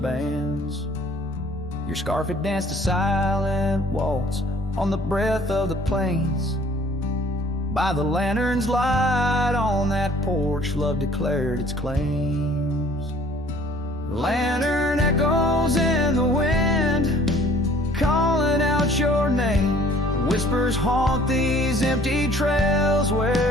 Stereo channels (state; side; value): normal; both; correlation 0.55